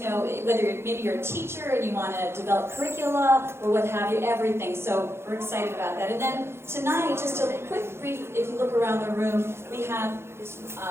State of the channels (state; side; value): late; left; 0.12 ms